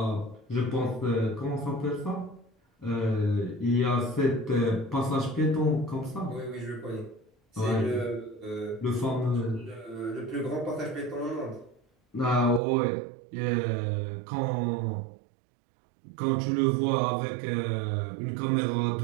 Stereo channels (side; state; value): left; drops out; at 12.6 s